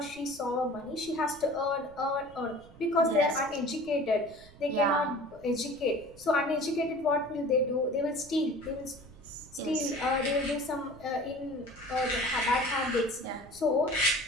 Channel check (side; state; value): right; noise; rumble, 22 dB below the sound